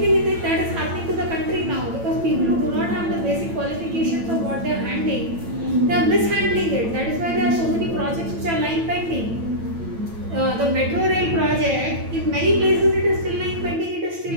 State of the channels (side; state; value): left; late; 9.0 ms